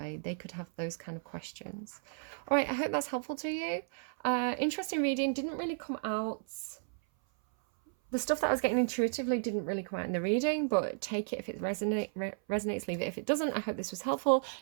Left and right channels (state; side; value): silent; left; 55 dB below the other